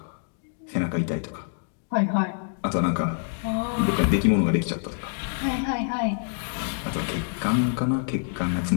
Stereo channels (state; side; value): silent; right; digital silence